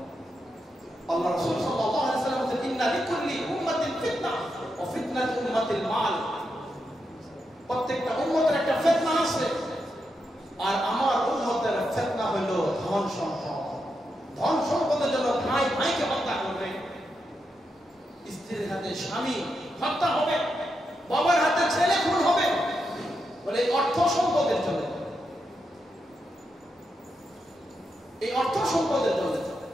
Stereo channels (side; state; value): both; normal; correlation 0.85